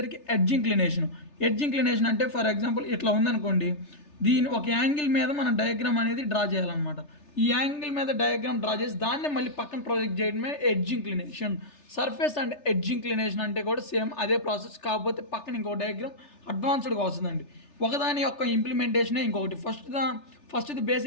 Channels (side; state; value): right; late; 3.3 ms